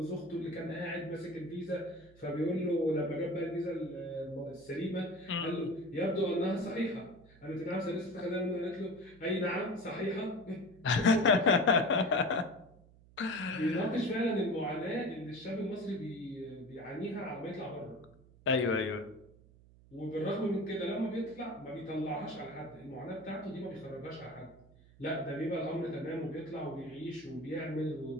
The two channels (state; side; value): noise; right; hum, 24 dB below the sound